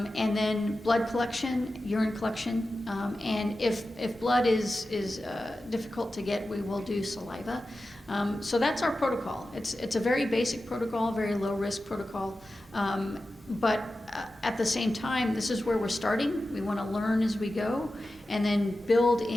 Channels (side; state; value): both; normal; correlation 0.93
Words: then blood collection, urine collection, and if blood is difficult to get, we will do saliva. So that's our protocol. It's a very basic protocol, very low risk protocol, but at the same time, this is where we're starting. We want to learn as we go, and then build